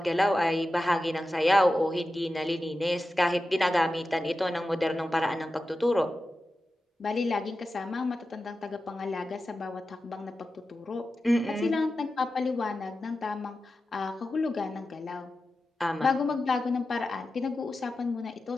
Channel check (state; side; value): normal; both; correlation 0.93